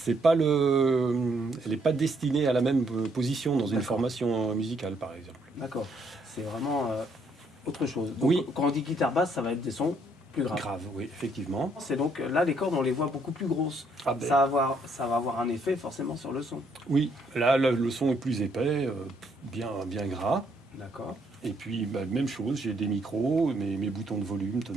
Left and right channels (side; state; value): both; normal; correlation 0.70